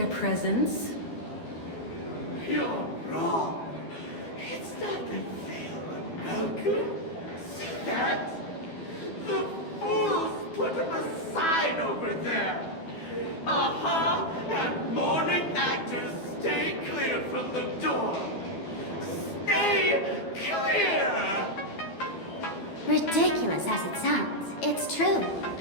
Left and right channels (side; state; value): right; late; 12 ms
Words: presence? You're wrong. It's not that they'll unwelcome. See that? The fools put up a sign over there. Aha and morning actors stay clear from the door. Stay clear! Ridiculous as it sounds, it's true.